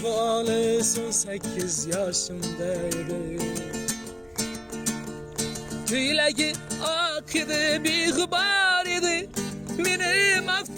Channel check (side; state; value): both; identical; correlation 1.00